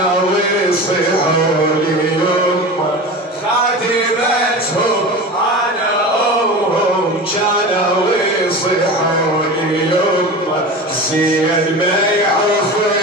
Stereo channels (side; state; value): both; normal; correlation 0.30